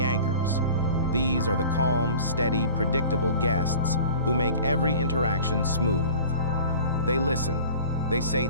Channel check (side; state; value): both; inverted; correlation -0.43